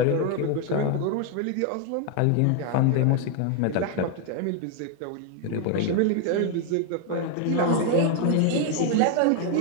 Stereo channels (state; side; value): different; both; correlation 0.00